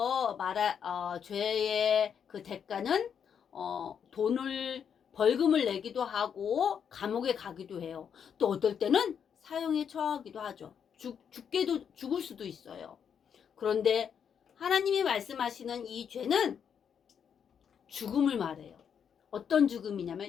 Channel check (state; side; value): quieter; right; 7.7 dB